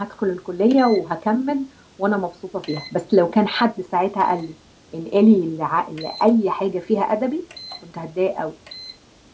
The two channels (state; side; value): identical; both; correlation 1.00